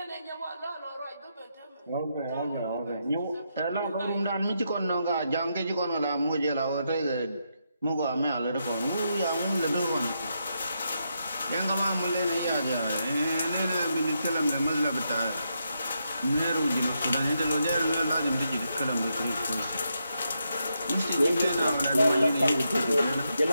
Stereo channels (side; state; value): both; inverted; correlation -0.82